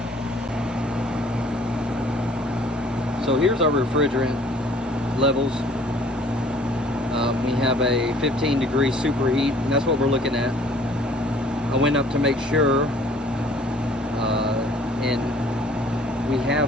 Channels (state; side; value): normal; both; correlation 0.55